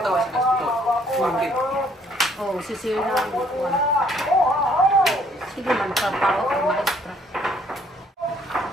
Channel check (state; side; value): normal; both; correlation 0.64